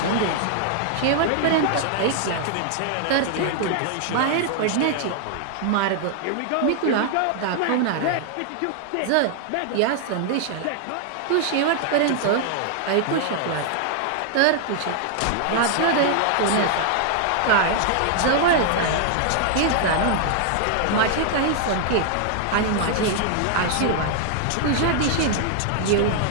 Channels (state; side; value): different; both; correlation 0.00